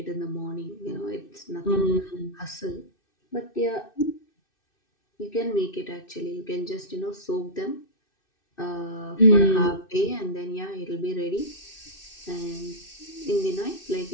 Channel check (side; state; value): right; late; 2.6 ms